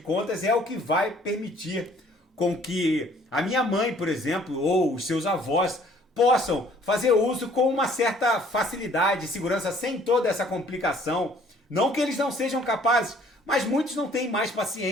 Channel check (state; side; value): normal; both; correlation 0.58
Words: é o que vai permitir com que a minha mãe, por exemplo, ou os seus avós possam fazer uso com uma certa facilidade e segurança, sem toda essa complicação. Não que eles não sejam capazes, mas muitos não têm mais